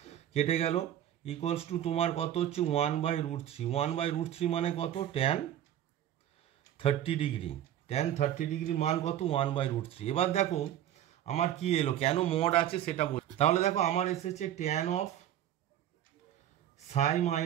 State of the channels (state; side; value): quieter; left; 11.4 dB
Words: কেটে গেল ইকুয়ালস টু তোমার কত হচ্ছে 1/√3, 1/√3 মানে কত ট্যান 30 ডিগ্রি, ট্যান 30 ডিগ্রির মান কত 1/√3। এবার দেখো আমার কি এলো, কেন মড আছে সেটা বল, তাহলে দেখো আমার এসেছে tan of Sai